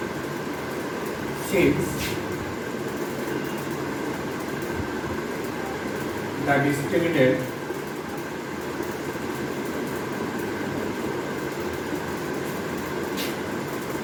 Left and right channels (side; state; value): both; identical; correlation 1.00